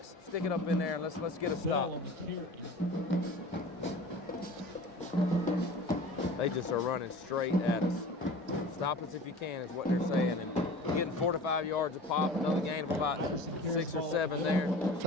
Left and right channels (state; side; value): normal; both; correlation 0.39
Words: stick it up in there, and let's get a stop. They just are running straight at us. Stop us if you can is what they're saying. And getting 4 to 5 yards a pop, another gain of about 6 or 7 there.